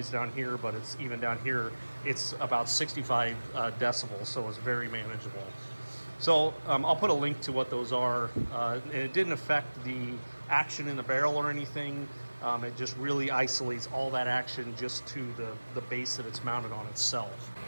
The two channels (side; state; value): both; inverted; correlation -1.00